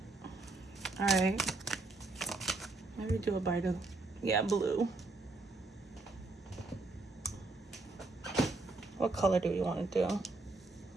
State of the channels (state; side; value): quieter; left; 3.3 dB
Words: All right. Maybe do it by the, blue. What color do you want to do?